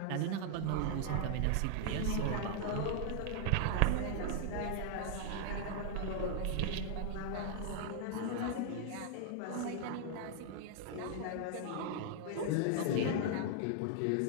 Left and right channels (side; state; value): both; different; correlation 0.00